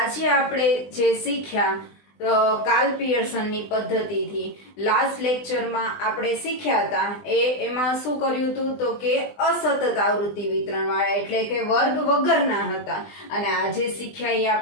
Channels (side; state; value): right; late; 20 ms